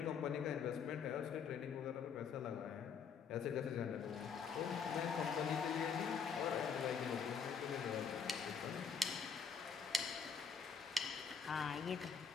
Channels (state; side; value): quieter; right; 6.1 dB